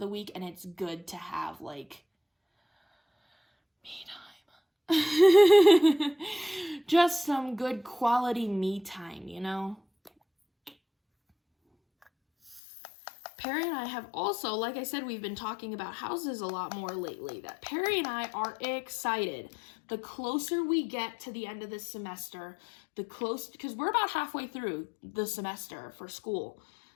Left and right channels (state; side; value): drops out; right; at 12.6 s